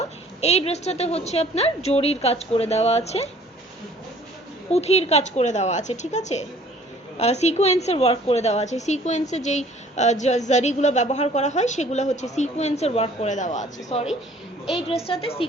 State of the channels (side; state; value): both; normal; correlation 0.54